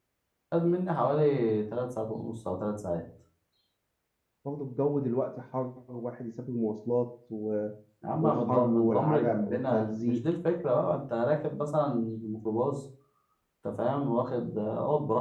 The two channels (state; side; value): identical; both; correlation 1.00